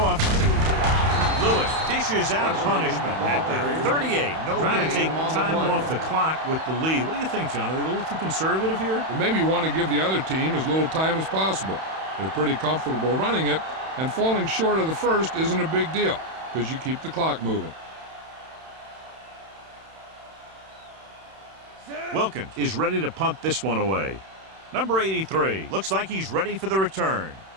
Lewis dishes out punishment at the 38. Trying to take time off the clock with the lead. What do you think, John? Are they a little too conservative here? Well, maybe you want to give the other team as little time as possible. They're pretty comfortable running it, and falling short of the first isn't a big deal because you keep the clock moving. Wilkins is ready to punt this one away. Number 83 looks like he's ready for the return.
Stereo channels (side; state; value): left; late; 31 ms